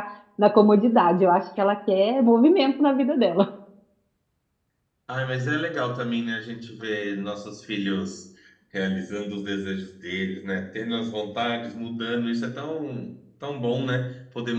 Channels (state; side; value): identical; both; correlation 1.00